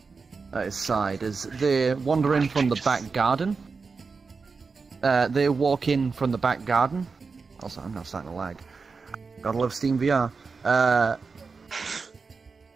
at his side as they wander in from the back garden. They walk in from the back garden. Also, I'm now starting to lag. Gotta love Steam VR.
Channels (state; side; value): quieter; left; 4.7 dB